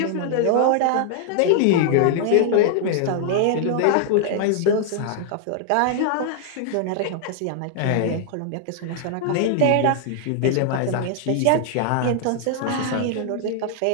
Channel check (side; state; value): both; different; correlation -0.01